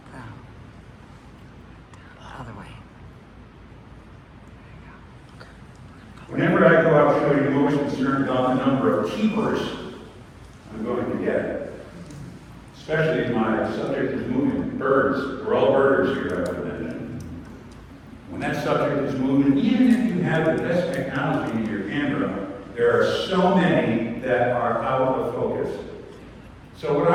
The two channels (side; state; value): both; identical; correlation 1.00